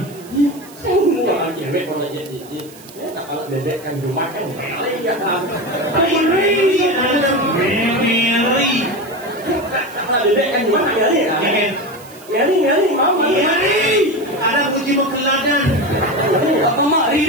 Sao mua là chuyện về còn là chuyện gì? Nếu là để anh dùng mắt cái mẹ lấy ra làm. Meri, Meri. Là để anh dùng mắt cái gì à? Nhớ đi máu mà. Meri. Ada kunci pengeladan. Apa mak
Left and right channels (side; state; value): right; noise; hiss, 21 dB below the sound